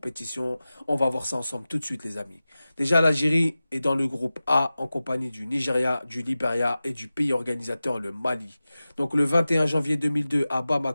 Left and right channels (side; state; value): both; inverted; correlation -0.96